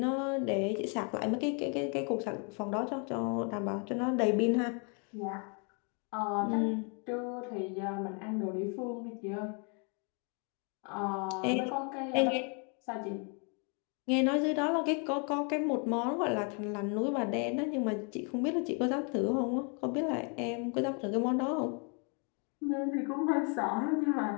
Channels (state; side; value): quieter; right; 37.3 dB